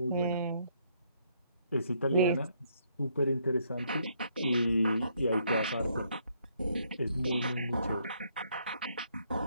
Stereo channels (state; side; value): inverted; both; correlation -0.71